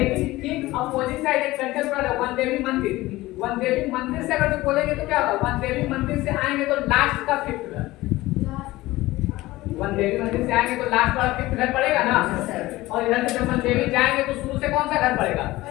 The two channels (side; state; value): right; quieter; 18.5 dB